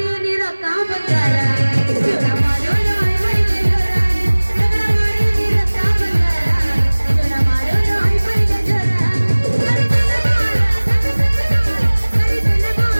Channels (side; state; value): both; inverted; correlation -1.00